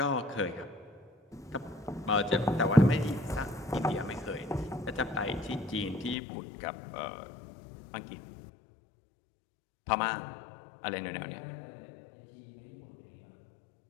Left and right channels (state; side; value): drops out; right; at 6.2 s